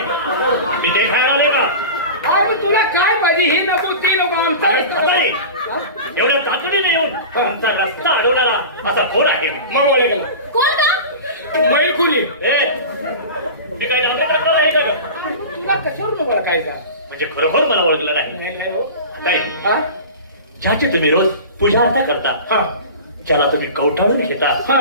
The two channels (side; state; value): both; inverted; correlation -0.32